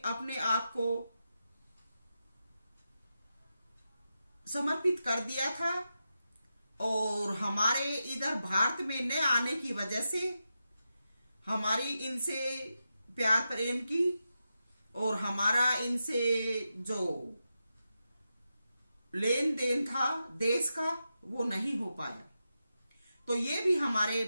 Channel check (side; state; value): both; inverted; correlation -0.89